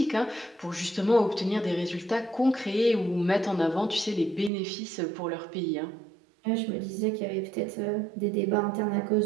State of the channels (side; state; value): left; drops out; at 4.5 s